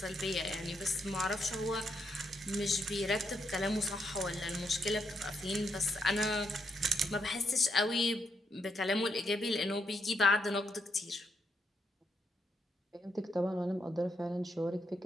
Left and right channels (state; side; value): normal; both; correlation 0.78